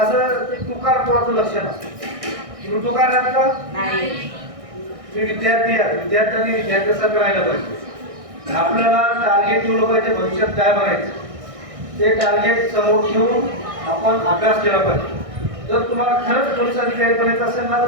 ते तुकार पोराचं लक्षण असतं. तुम्ही तुकार राहत का? तुम्ही विद्यार्थी आहात, विद्यार्थ्यांनी विद्यार्थ्यासारखं राहायला पाहिजे. आपल्याला टार्गेट ठेवलं पाहिजे, भविष्यात काय बनायचं ते टार्गेट समोर ठेवून आपण अभ्यास केला पाहिजे. जर तुम्हाला खरंच पोलीस अधिकारी बनायचं असेल ना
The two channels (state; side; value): late; left; 1.6 ms